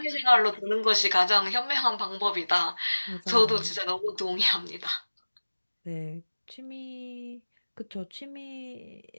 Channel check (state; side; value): inverted; both; correlation -1.00